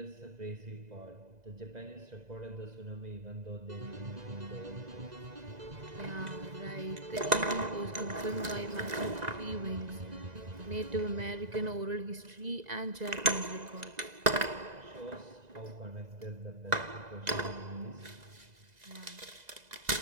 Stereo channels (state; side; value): late; left; 2.0 ms